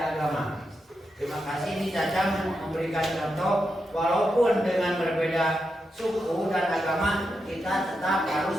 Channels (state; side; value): normal; both; correlation 0.86